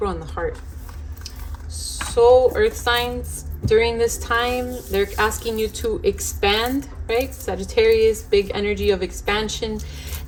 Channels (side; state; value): both; identical; correlation 1.00